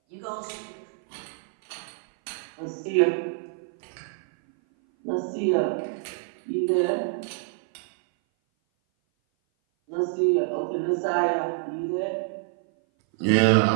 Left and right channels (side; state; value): left; silent; 57 dB below the other